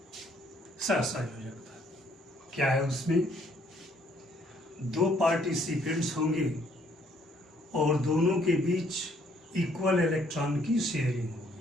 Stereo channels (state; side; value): normal; both; correlation 0.65